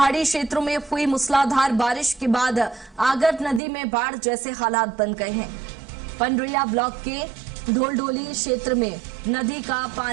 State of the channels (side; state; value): left; drops out; at 3.6 s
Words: क्षेत्रों में हुई मूसलाधार बारिश के बाद आगर नदी में बाढ़ जैसे हालात बन गए हैं। पंडरिया ब्लॉक के ढोलढोली क्षेत्र में नदी का